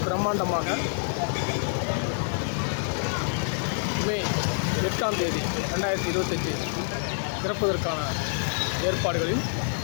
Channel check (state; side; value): silent; right; 59 dB below the other